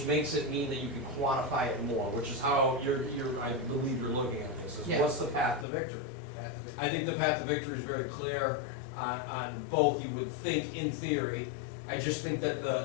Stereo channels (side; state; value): right; drops out; at 5.7 s